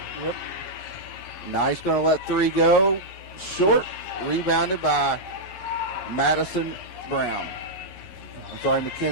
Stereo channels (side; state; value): right; late; 11 ms